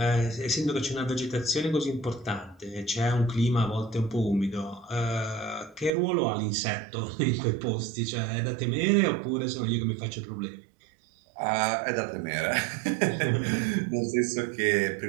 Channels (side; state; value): left; drops out; at 5.9 s